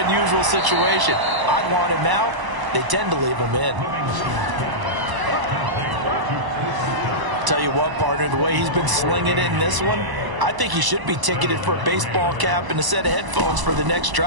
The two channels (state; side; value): late; left; 1.0 ms